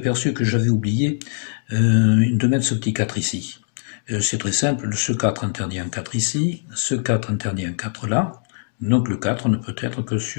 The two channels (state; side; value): silent; right; digital silence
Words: que j'avais oublié de mettre ce petit 4 ici. C'est très simple, ce 4 interdit un 4 ici, ce 4 interdit un 4 là, donc le 4 ne peut être que